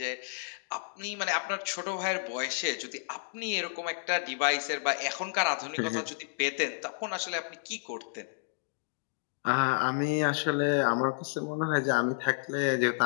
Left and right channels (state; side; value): silent; right; digital silence